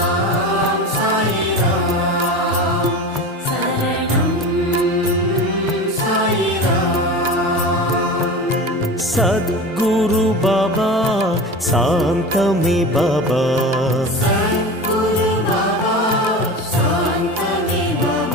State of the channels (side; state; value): both; normal; correlation 0.31